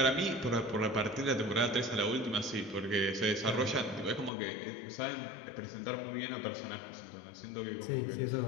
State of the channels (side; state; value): right; drops out; at 4.3 s